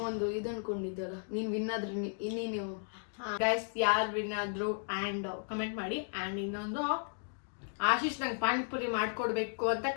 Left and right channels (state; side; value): silent; right; digital silence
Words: ಒಂದು ಇದು ಅನ್ಕೊಂಡಿದ್ದಲ್ಲ, ನೀನು ವಿನ್ ಆದ್ರೆ ನೀನು ಗೈಸ್ ಯಾರು ವಿನ್ ಆದ್ರು ಆ್ಯಂಡ್ ಕಮೆಂಟ್ ಮಾಡಿ. ಆ್ಯಂಡ್ ಇನ್ನೊಂದು ಆಶೀಶ್ ನಂಗೆ ಪಾನಿಪುರಿ ಮಾಡ್ಕೊಡ್ಬೇಕು ಅಂತ